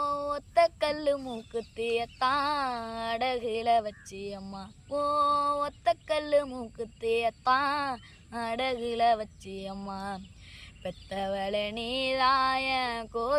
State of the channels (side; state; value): both; identical; correlation 1.00